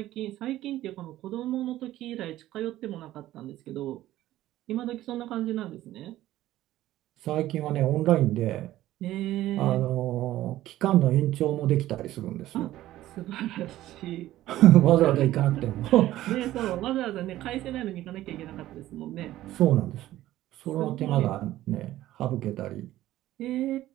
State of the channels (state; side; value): quieter; left; 14.7 dB